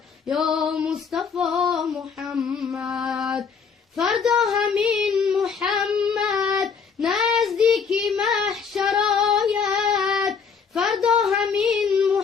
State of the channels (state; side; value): quieter; right; 5.9 dB